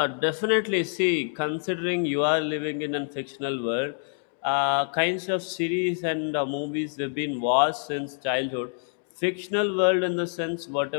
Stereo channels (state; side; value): silent; right; 60 dB below the other